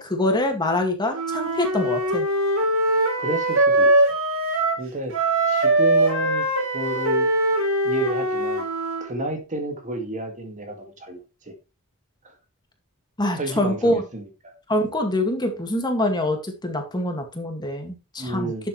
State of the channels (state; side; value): normal; both; correlation -0.10